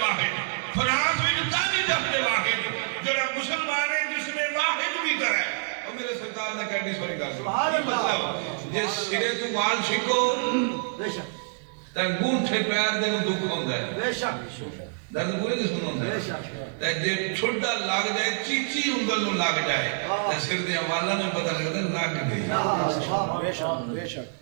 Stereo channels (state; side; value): silent; left; digital silence